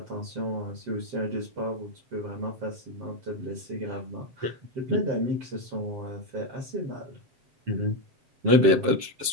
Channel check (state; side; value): late; left; 7.5 ms